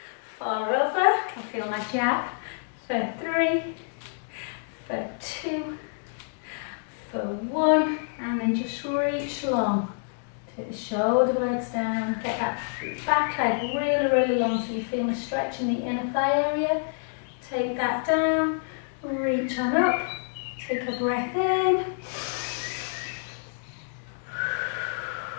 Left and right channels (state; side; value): silent; right; digital silence